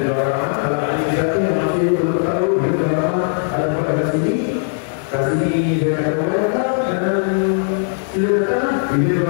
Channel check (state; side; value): silent; right; digital silence